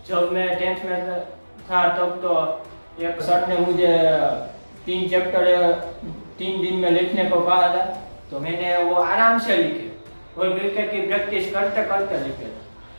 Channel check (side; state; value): both; inverted; correlation -1.00